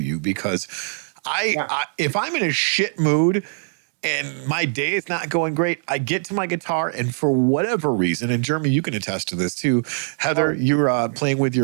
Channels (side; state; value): left; silent; digital silence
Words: you because I if I'm in a shit mood and my day is not going great, I get to my guitar and for whatever reason, and Jeremy, you can attest to this too. Heather, you're playing with